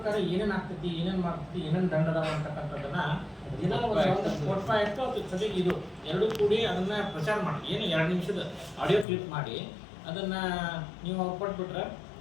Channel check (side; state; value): right; drops out; at 9.1 s